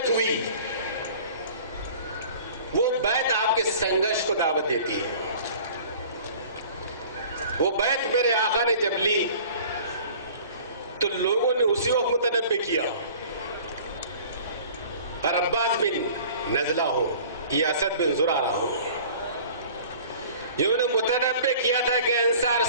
हुई, वो बैत आपके संघर्ष को दावत देती है। वो बैत मेरे आका ने जब ली तो लोगों ने उसी वक्त मुतनब्बे किया, और अब्बास बिन नजला हो या असद बिन जुरारा हो, जिन्होंने मुतनब्बे किया था कि अंसार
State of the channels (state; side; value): inverted; both; correlation -0.46